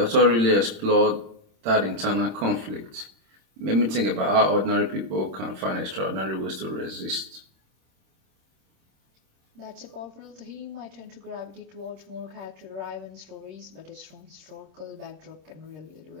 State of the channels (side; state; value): left; late; 26 ms